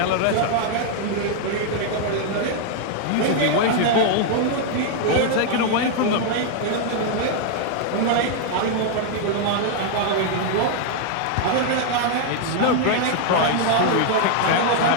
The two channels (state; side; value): different; both; correlation 0.00